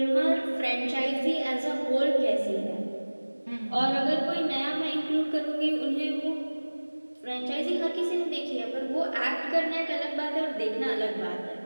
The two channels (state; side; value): inverted; both; correlation -1.00